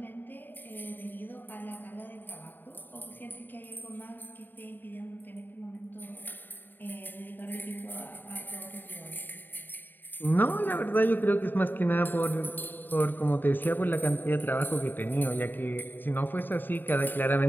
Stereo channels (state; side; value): late; right; 0.092 ms